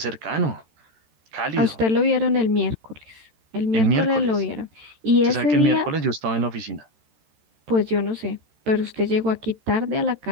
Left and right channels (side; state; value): left; late; 13 ms